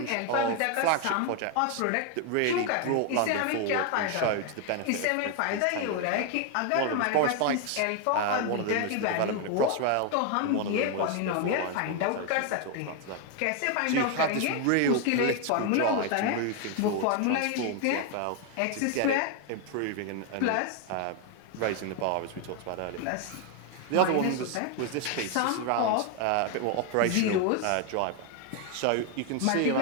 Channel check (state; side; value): different; both; correlation 0.01